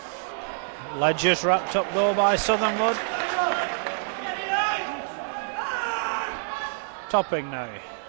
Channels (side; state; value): left; silent; digital silence